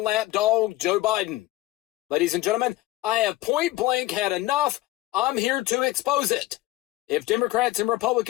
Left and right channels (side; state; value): right; quieter; 17.5 dB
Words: lapdog Joe Biden. Ladies and gentlemen, I have point blank had enough. I'm here to expose it. If Democrats and